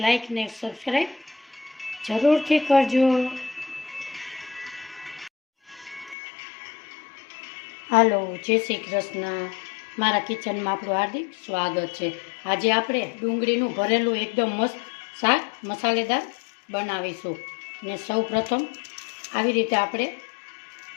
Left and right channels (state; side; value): drops out; right; at 6.2 s